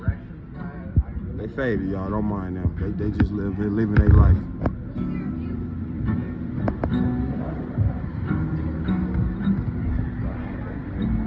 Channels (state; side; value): identical; both; correlation 1.00